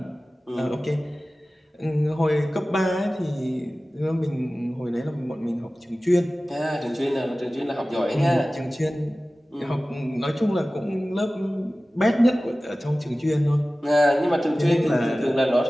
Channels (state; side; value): normal; both; correlation 0.97